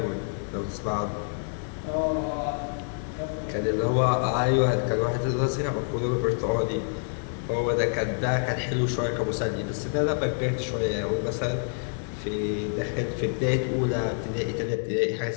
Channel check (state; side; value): silent; right; 60 dB below the other